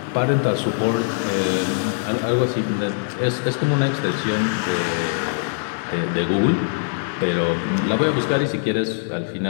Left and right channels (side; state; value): right; silent; digital silence